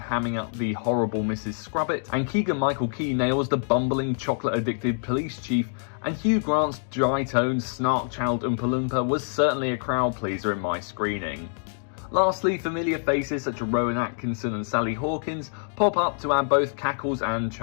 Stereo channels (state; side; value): silent; right; digital silence